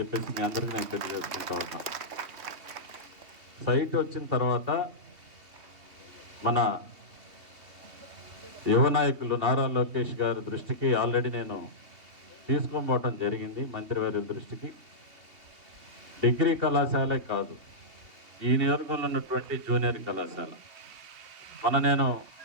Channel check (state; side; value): late; left; 3.2 ms